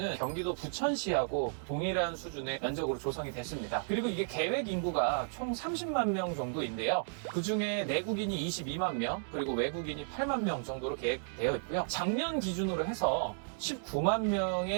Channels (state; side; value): silent; left; digital silence